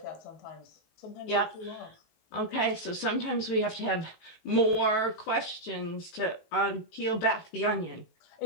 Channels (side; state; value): right; late; 18 ms